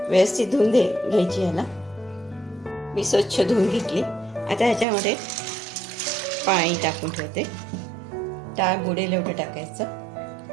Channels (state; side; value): drops out; left; at 4.9 s